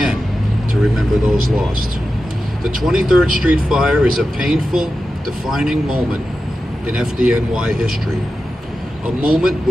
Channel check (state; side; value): normal; both; correlation 0.92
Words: to remember those lost. The 23rd Street fire is a painful, defining moment in FDNY history, a moment